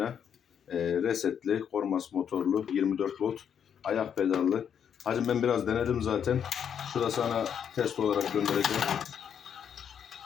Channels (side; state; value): right; quieter; 8.2 dB